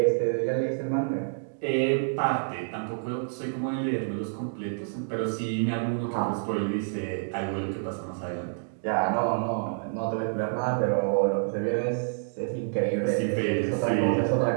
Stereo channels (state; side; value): silent; left; digital silence